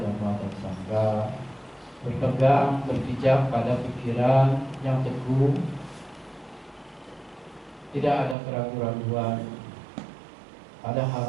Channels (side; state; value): left; drops out; at 8.3 s